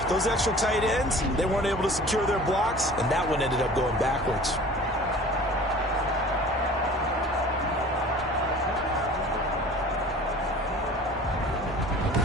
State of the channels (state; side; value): normal; both; correlation 0.44